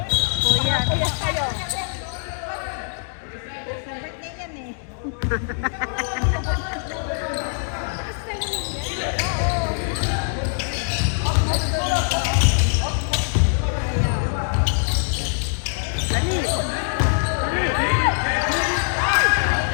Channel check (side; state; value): right; silent; digital silence